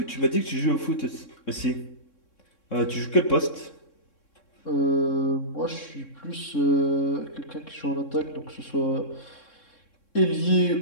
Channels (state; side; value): late; right; 3.6 ms